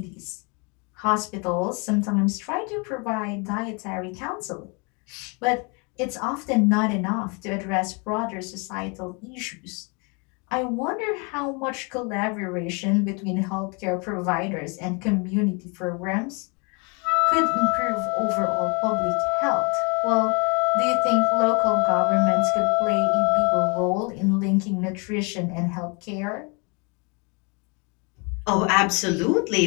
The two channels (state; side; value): quieter; right; 32.3 dB